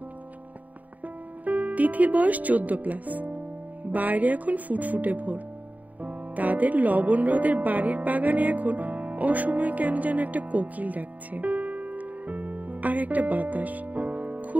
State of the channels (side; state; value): left; late; 0.075 ms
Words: তিথির বয়স 14+। বাইরে এখন ফুটফুটে ভোর। তাদের লবণ হ্রদের বাড়ির বাগানে এখন অসময়ে কেন যেন একটা কোকিল ডাকছে, আর একটা বাতাস,